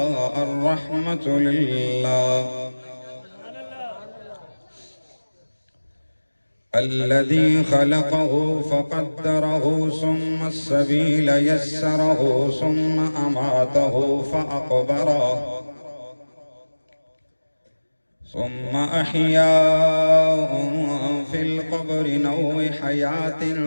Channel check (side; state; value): both; inverted; correlation -1.00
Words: الرحمة لله. الذي خلقه فقدره ثم السبيل يسره ثم أماته فأقبره ثم أحياه في القبر نوع حياة